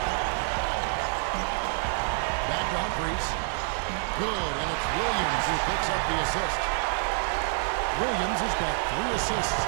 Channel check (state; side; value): silent; left; 60 dB below the other